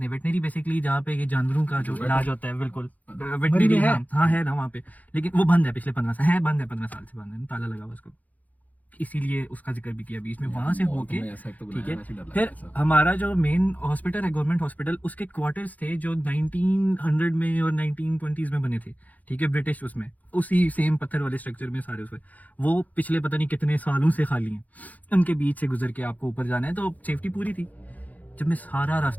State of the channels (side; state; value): right; late; 0.078 ms